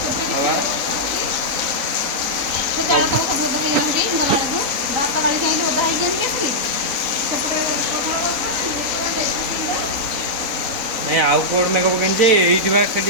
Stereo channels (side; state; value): left; late; 3.8 ms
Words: हाँ ଜାଳ ତକ ସବୁ ଓଦା ହେଇଗଲାଣି ଗଲା ବେଳକୁ ଭାତ ଗାଳିକି ଆଣିକି ଓଦା ହେଇକି ଆଣିକି ଆସିଲି ନାଇଁ ଆଉ କୋଉଠି ମେଘ ପକେଇନି ଯେ ଏଇଠି ବା